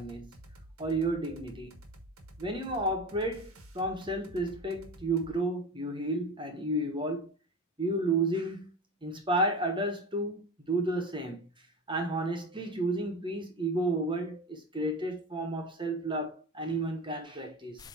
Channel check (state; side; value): normal; both; correlation 0.27